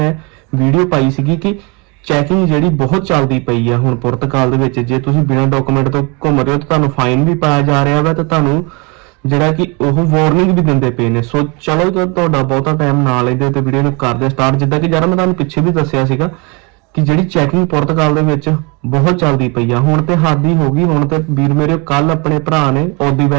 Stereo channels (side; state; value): left; quieter; 29.1 dB